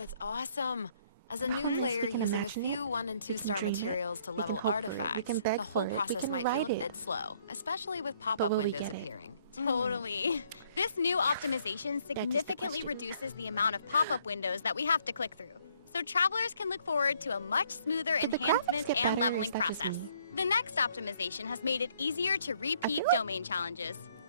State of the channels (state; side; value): inverted; both; correlation -0.65